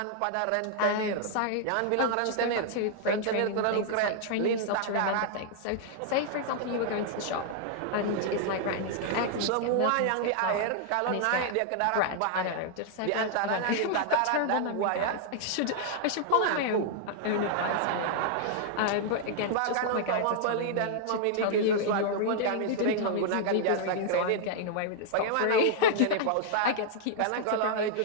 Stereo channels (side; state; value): both; different; correlation -0.01